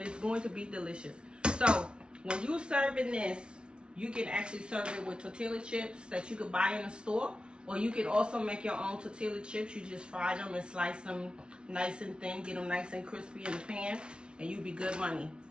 it's going to be delicious. So when you're serving this, you can actually serve it with tortilla chips that you could buy in the store. Or you can also make your own tortilla chips. You just fry them and slice them nice and thin. Get them nice and crispy in the pan. And you be good money.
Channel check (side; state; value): left; late; 0.056 ms